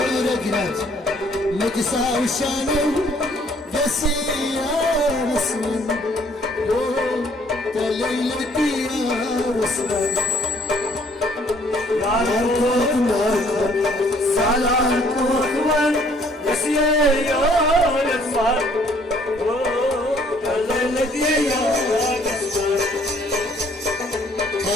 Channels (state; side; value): normal; both; correlation 0.62